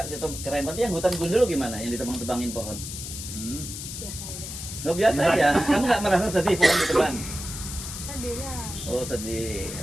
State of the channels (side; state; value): left; noise; hiss, 8 dB below the sound